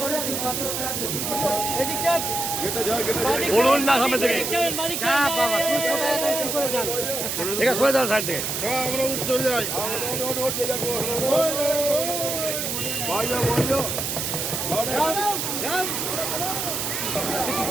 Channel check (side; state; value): right; noise; hiss, 2 dB below the sound